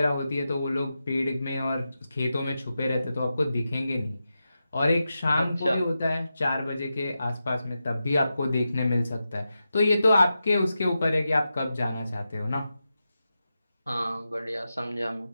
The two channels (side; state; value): both; inverted; correlation -0.90